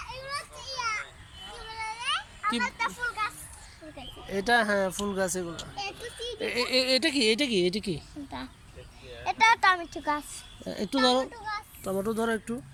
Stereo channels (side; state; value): both; identical; correlation 1.00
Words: কি এটা? হ্যাঁ ফুল গাছ এগুলো। এটা কি, এটা কি, এটা কি? এটা টমেটো গাছ। একটু ধরো, টমেটো ধরো একটু।